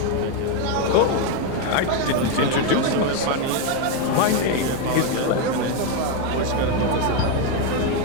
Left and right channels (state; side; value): different; both; correlation 0.02